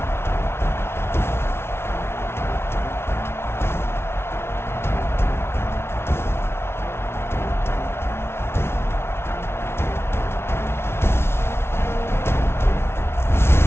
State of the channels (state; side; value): late; right; 0.12 ms